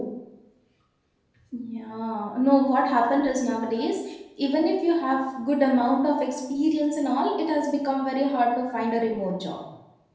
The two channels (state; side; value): identical; both; correlation 1.00